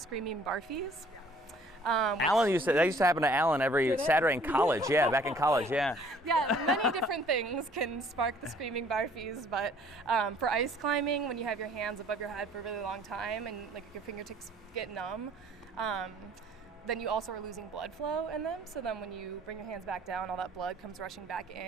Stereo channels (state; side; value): normal; both; correlation 0.57